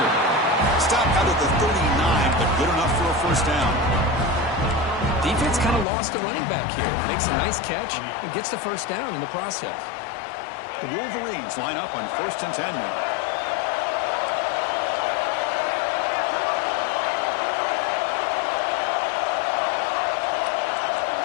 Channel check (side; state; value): right; drops out; at 5.9 s